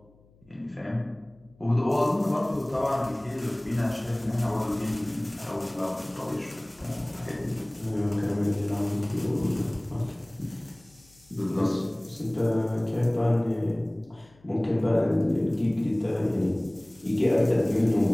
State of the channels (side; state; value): left; noise; hum, 29 dB below the sound